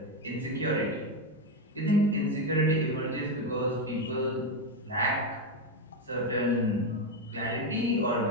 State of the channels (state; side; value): normal; both; correlation 0.09